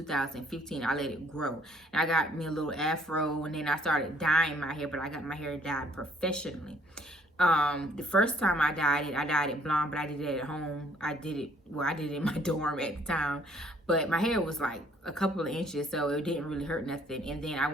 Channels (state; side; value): normal; both; correlation 0.62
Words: I let it grow. And I got me a little afro, and then I started dyeing my hair, but I got my hair dyed professionally. The first time I dyed it blonde, but I did it at home. I did it in my dorm at the time. But my hair was like a couple of inches, so it didn't really hurt nothing. And then I